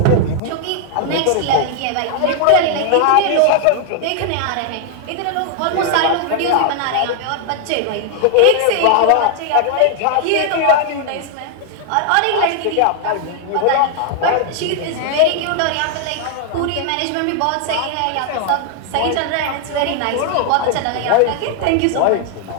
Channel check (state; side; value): different; both; correlation 0.00